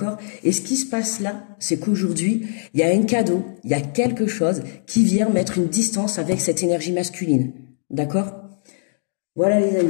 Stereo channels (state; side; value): silent; right; digital silence